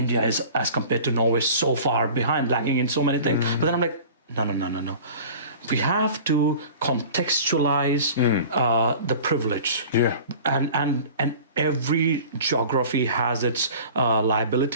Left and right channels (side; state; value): both; inverted; correlation -0.42